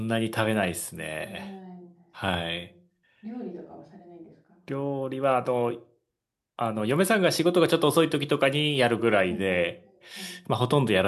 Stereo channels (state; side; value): identical; both; correlation 1.00